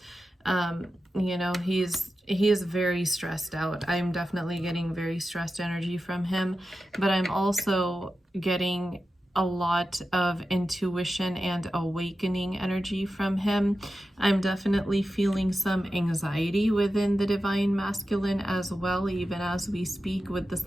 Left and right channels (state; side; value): normal; both; correlation 0.92